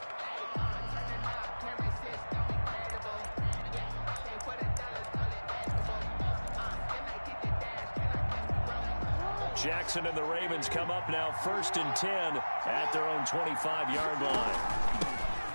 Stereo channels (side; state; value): both; inverted; correlation -1.00